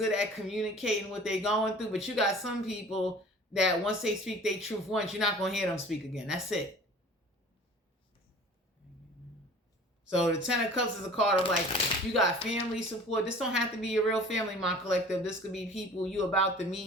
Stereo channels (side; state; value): both; normal; correlation 0.45